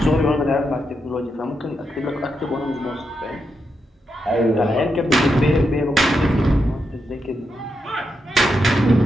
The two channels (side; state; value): both; normal; correlation 0.84